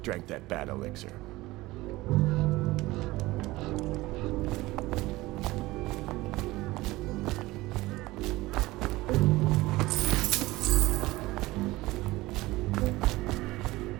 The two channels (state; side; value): quieter; left; 19.3 dB